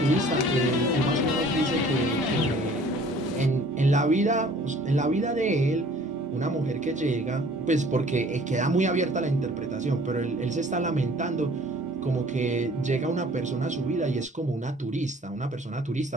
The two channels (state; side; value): normal; both; correlation 0.52